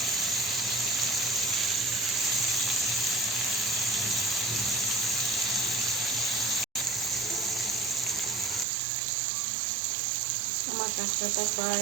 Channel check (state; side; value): drops out; left; at 8.7 s